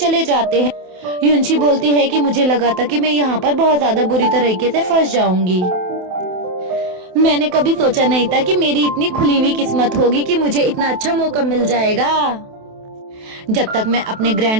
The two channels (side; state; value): left; late; 28 ms